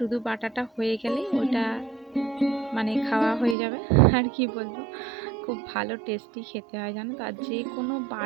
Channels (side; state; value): left; drops out; at 3.6 s